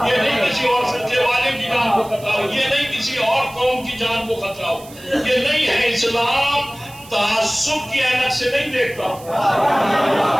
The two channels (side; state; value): right; noise; hiss, 20 dB below the sound